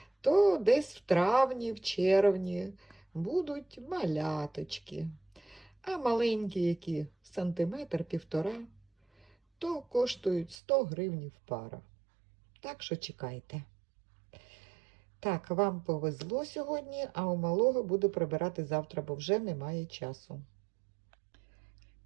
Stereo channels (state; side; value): drops out; left; at 10.6 s